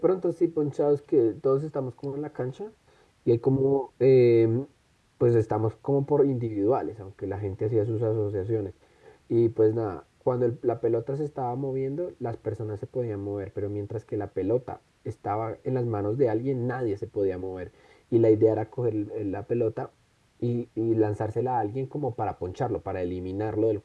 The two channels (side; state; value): both; identical; correlation 1.00